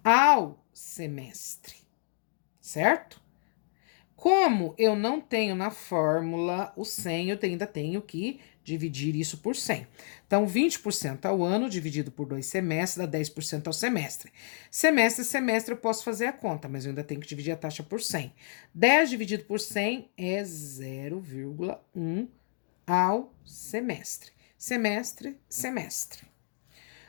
ao semestre. Certo? Como eu não tenho na fórmula o 100, eu ainda tenho que dividir isso por 100. Então, 20% ao ano dividido por 2 semestres dá 10% ao semestre. Semestre, semestre eu posso fazer a conta, mas eu ainda tenho que dividir a taxa por 100. 10 dividido por 100 é 0,1 ao semestre. Semestre, semestre.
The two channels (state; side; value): silent; right; digital silence